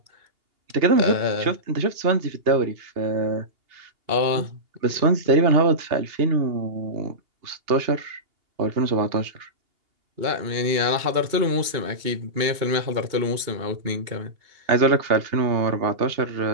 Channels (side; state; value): left; late; 2.8 ms